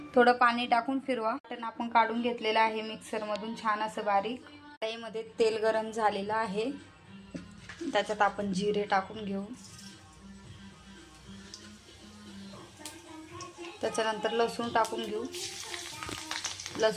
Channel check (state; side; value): identical; both; correlation 1.00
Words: थोडं पाणी टाकून फिरवा। आपण काढून घेतलेलं आहे मिक्सर मधून छान असं बारीक। कढईमध्ये तेल गरम झालेलं आहे, त्याच्यात आपण जिरे टाकून घेऊ। त्याच्यानंतर लसूण टाकून घेऊ।